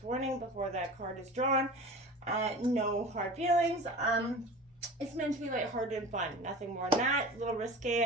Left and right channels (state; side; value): normal; both; correlation 0.35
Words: warning before that card is drawn. No hard feelings. It's meant to be lighthearted and fun. Nothing more than that. A little